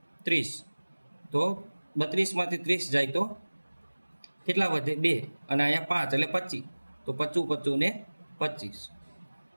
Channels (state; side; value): inverted; both; correlation -1.00